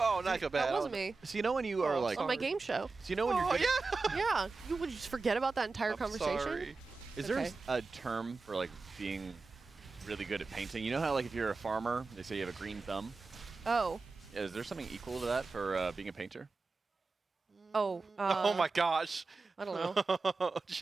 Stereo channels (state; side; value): quieter; left; 4.0 dB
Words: not so bad. that wasn't me. So you know when you are Oh, like, On my game show. so you know when Oh, you're yeah. Yeah. You would just forget about that entire I'm conversation? sorry. Is there Okay. a term for like being really good at painting? You know how like if you're a farmer, they say you have a green thumb. Oh. Is there something equal to that for being a painter? Oh. Oh my gosh. I don't know.